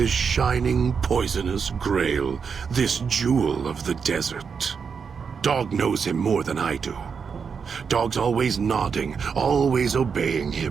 shining, poisonous grail, this jewel of the desert. Dog knows him more than I do. Dog's always nodding, always obeying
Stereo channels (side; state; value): left; quieter; 6.1 dB